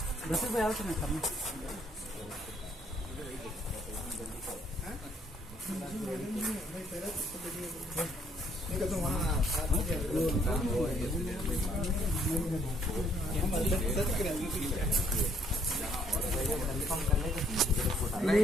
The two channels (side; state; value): both; normal; correlation 0.66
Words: भाई आओ तो मैं करना